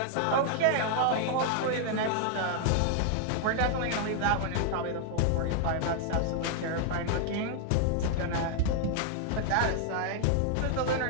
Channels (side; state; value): both; different; correlation 0.00